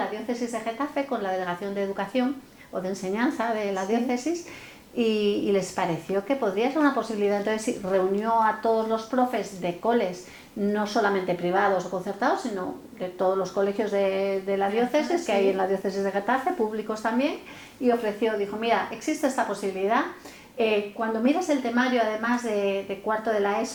diócesis de Getafe, con la delegación de educación o de enseñanza de la diócesis, y les pareció que podría ser una posibilidad. Entonces reunió a todos los profes de coles, no solamente privados o concertados, sino de todos los colegios de la diócesis, que hay en la diócesis de Getafe, públicos también, y dijo, mira, existe esta posibilidad, Cuando miras el temario, además de cuarto de la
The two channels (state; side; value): identical; both; correlation 1.00